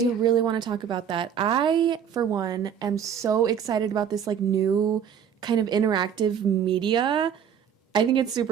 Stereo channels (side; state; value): left; quieter; 8.2 dB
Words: really want to talk about that. I, for one, am so excited about this like new kind of interactive media. I think it's